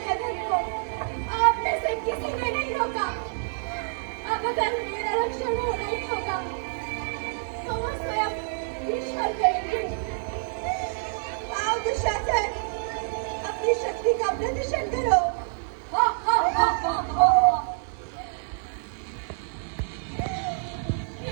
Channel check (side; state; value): left; silent; digital silence